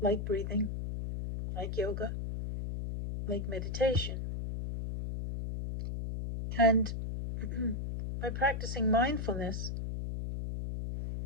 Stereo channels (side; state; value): left; noise; hum, 4 dB below the sound